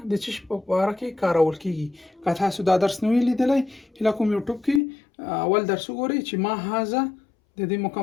د څه شي په باره کې کارول کېږي. که تاسو دا درس نه وي لیدلی، هیله کوم یوټیوب کې اول درس وګورئ چې ما هذا د دې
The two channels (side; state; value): right; drops out; at 4.8 s